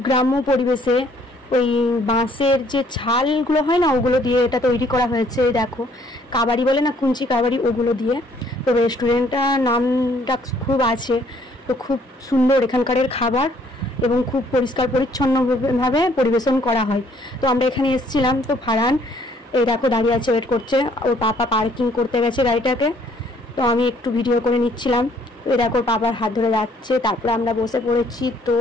গ্রাম্য পরিবেশে ওই বাঁশের যে ছালগুলো হয় না, ওগুলো দিয়ে এটা তৈরি করা হয়েছে। দেখো, কাবাড়ি বলে না, কুঞ্চি কাবাড়ি, ওগুলো দিয়ে। তো রেস্টুরেন্টটার নামটা খুব আছে, তো খুব সুন্দর এখানকারের খাবার এবং খুব পরিষ্কার পরিচ্ছন্নভাবে পরিবেশন করা হয়। তো আমরা এখানে এসেছিলাম। তো ফারহান এই দেখো দাঁড়িয়ে আছে, ওয়েট করছে। ওর পাপা পার্কিং করতে গেছে গাড়িটাকে, তো আমি একটু ভিডিও করে নিচ্ছিলাম। এই দেখো পাপার হাত ধরে যাচ্ছে, তারপরে আমরা বসে পড়েছি। তো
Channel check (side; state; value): both; normal; correlation 0.63